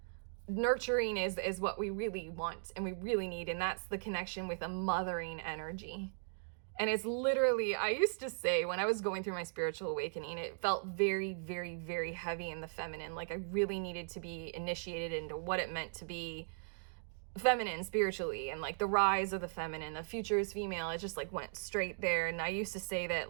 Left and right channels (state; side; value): silent; left; digital silence